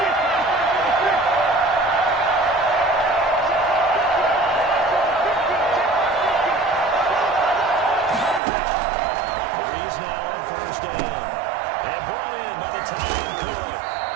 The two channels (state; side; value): drops out; left; at 8.4 s